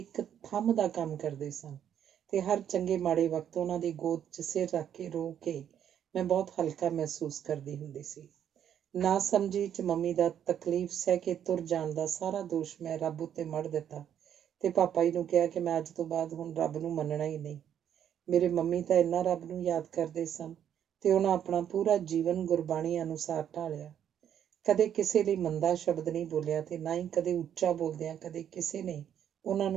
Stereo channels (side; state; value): left; quieter; 9.5 dB